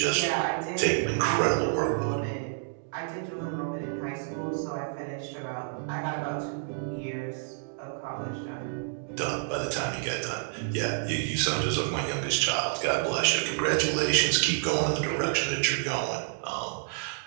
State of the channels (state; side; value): silent; left; digital silence